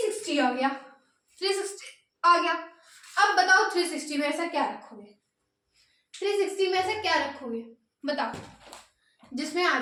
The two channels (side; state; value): both; identical; correlation 1.00